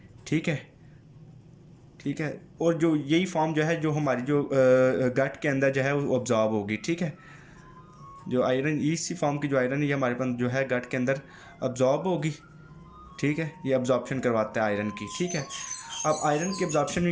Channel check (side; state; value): both; identical; correlation 1.00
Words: ठीक है, ठीक है, और जो यही फॉर्म जो है जो हमारी जो गट के अंदर जो है वो ऑब्जॉर्ब होगी। ठीक है, जो आयरन इसी फॉर्म की जो आयरन है ये हमारे पास जो है गट के अंदर अब्जॉर्ब होगी। ठीक है, ये अब्जॉर्प्शन करवाता है आयरन की। ठीक है, अब आयरन की अब्जॉर्प्शन